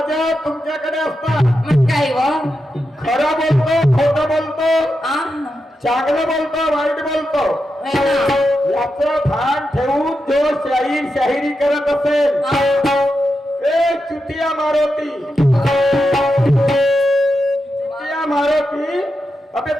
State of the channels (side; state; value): both; normal; correlation 0.87